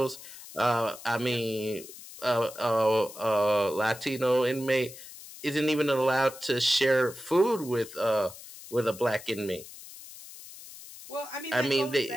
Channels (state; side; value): noise; left; hiss, 16 dB below the sound